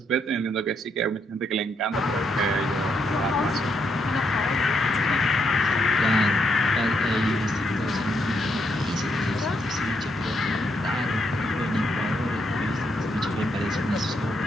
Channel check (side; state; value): both; normal; correlation 0.77